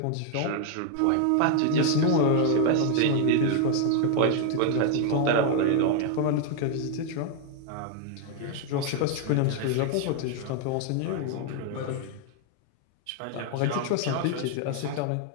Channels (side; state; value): both; different; correlation 0.00